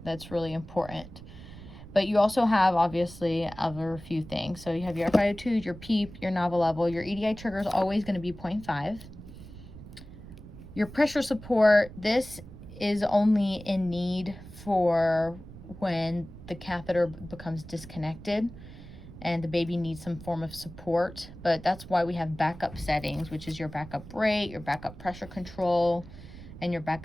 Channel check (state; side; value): noise; right; rumble, 15 dB below the sound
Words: That's really important. But you also have obviously other few things. So you have your FiO2, your PEEP, your Nava level. Your EDI trigger is always going to be 0.5. Your pressure support, this is only in need for when the catheter becomes disconnected and the baby needs some form of support, but that's why we have backup settings, which is your backup rate, your backup pressure control, and your